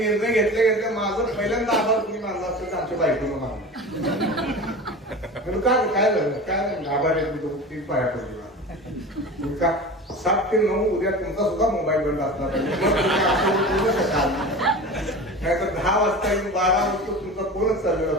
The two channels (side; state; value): both; normal; correlation 0.33